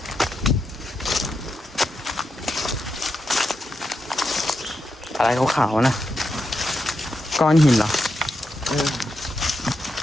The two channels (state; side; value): normal; both; correlation 0.85